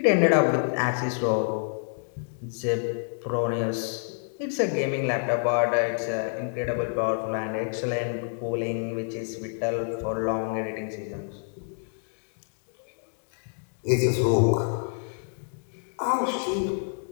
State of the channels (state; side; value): silent; right; 60 dB below the other